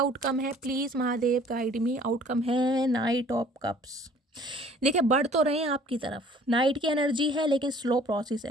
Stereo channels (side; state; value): both; normal; correlation 0.54